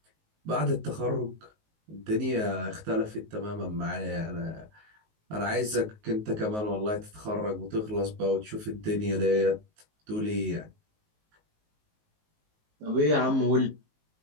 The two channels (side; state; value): left; late; 19 ms